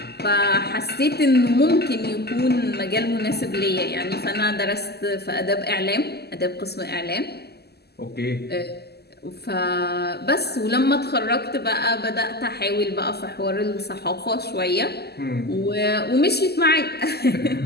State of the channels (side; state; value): right; late; 0.47 ms